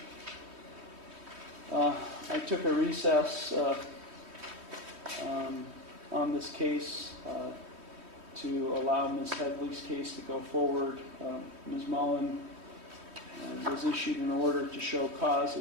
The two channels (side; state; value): left; late; 3.2 ms